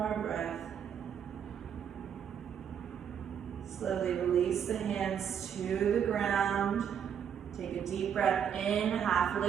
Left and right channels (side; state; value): left; quieter; 8.3 dB